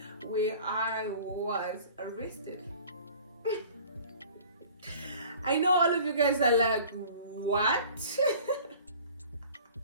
where I was arrested. I know all of you guys are like, what?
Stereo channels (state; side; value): inverted; both; correlation -0.47